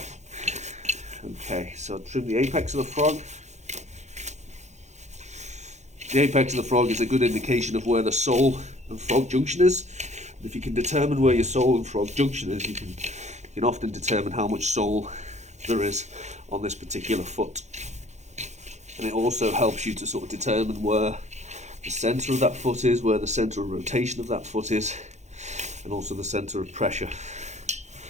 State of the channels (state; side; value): late; left; 0.33 ms